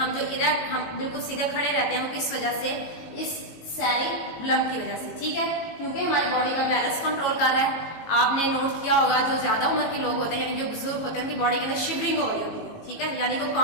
जो इरेक्ट, हम बिल्कुल सीधे खड़े रहते हैं, वो किस वजह से? इस सेरिबलम की वजह से, ठीक है। क्योंकि हमारी बॉडी का बैलेंस कंट्रोल कर रहा है। आपने नोट किया होगा जो ज्यादा उम्र के लोग होते हैं, यानी जो बुजुर्ग होते हैं, उनकी बॉडी के अंदर शिवरिंग हो रही होती है, ठीक है, यानी वो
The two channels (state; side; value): late; right; 18 ms